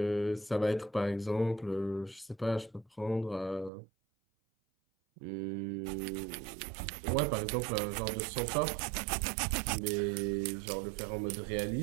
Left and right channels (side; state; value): left; drops out; at 3.7 s